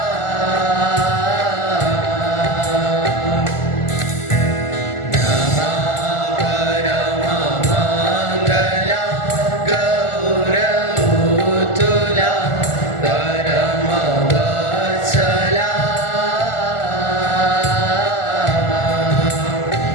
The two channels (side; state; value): right; late; 1.4 ms